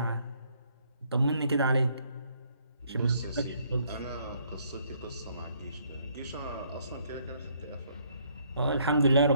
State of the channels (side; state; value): both; inverted; correlation -0.67